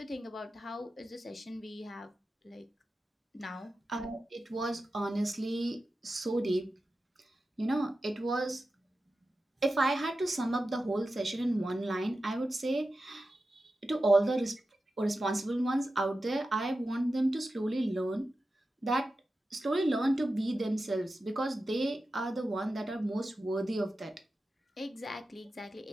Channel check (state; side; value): normal; both; correlation 0.92